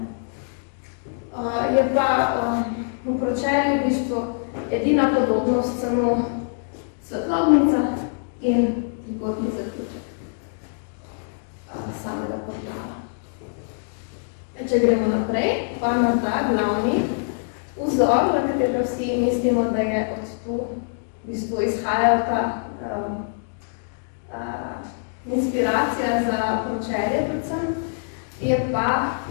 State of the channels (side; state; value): right; silent; digital silence